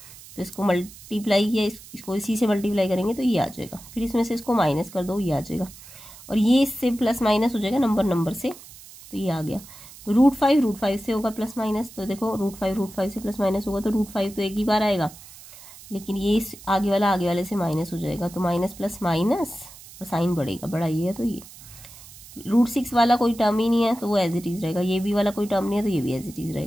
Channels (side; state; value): right; noise; hiss, 19 dB below the sound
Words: तो इसको मल्टीप्लाई किया, इसको इसी से मल्टीप्लाई करेंगे तो ये आ जाएगा, फिर इसमें से इसको माइनस कर दो ये आ जाएगा, और ये इससे प्लस माइनस हो जाएगा नंबर से, तो ये आ गया। तो √5 से होगा प्लस माइनस, तो देखो √5 से प्लस माइनस होगा तो √5 तो एक ही बार आएगा, लेकिन ये इस आगे वाले से माइनस हो जाएगा, तो माइनस प्लस माइनस और साइन बढ़ेगा, बड़ा ये है तो ये। √6 वाला कोई टर्म ही नहीं है तो वो एज इट इज रहेगा, ये भी वाला कोई टर्म नहीं है तो ये भी एज इट इज